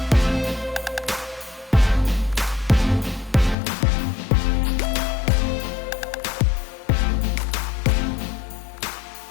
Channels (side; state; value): right; drops out; at 3.6 s